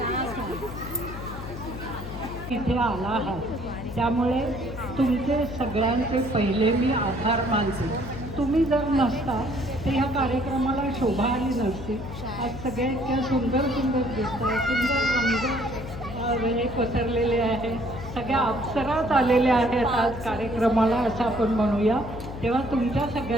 इथे आला आहात त्यामुळे तुमचे सगळ्यांचे पहिले मी आभार मानते. तुम्ही जर नसता तर ह्या कार्यक्रमाला शोभा आली नसती. आज सगळ्या इतक्या सुंदर सुंदर दिसत आहे, सुंदर रंग हे पसरलेले आहे, सगळ्या अप्सरात आलेल्या आहेत आज कार्यक्रमाला असं आपण म्हणूया. तेव्हा तुमच्या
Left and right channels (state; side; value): noise; left; hum, 10 dB below the sound